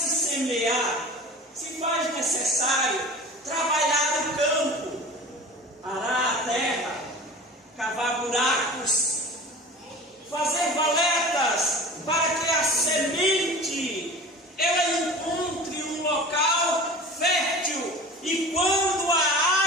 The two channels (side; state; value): both; normal; correlation 0.38